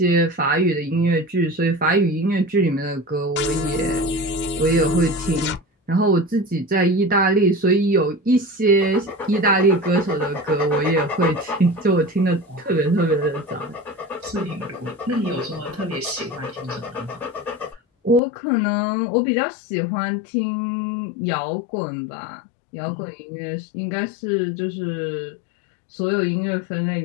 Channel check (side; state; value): right; drops out; at 18.2 s